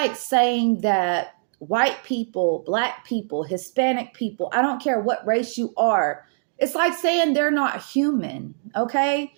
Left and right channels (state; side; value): silent; left; digital silence